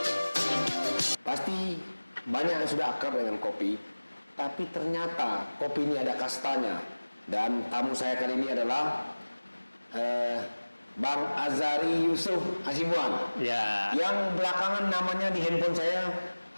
Pasti banyak yang sudah akrab dengan kopi, tapi ternyata kopi ini ada kastanya. Dan tamu saya kali ini adalah Bang Azari Yusuf Hasibuan. Ya. Yang belakangan namanya di handphone saya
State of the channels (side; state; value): both; inverted; correlation -1.00